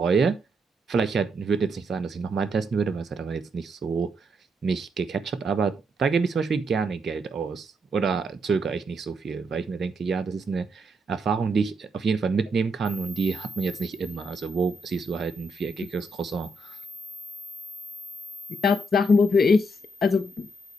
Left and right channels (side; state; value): both; normal; correlation 0.78